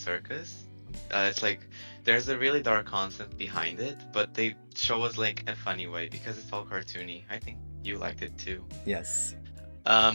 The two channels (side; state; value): both; inverted; correlation -1.00